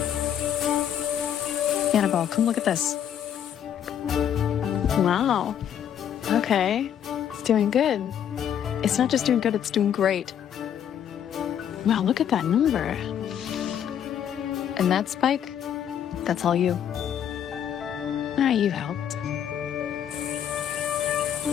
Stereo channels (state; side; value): quieter; right; 9.4 dB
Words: Annabelle, come look at this. Wow. Okay. It's doing good. It's not just doing good, it's doing great. Wow, look at that number. And that spike, that's all you. Ah, you helped.